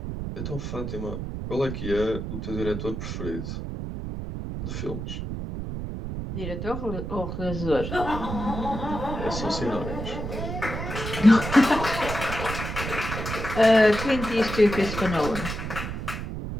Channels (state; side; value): noise; right; rumble, 5 dB below the sound